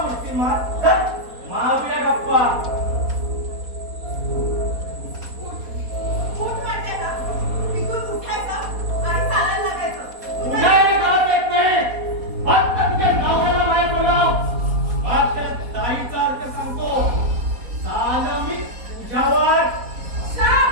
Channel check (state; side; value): late; left; 4.2 ms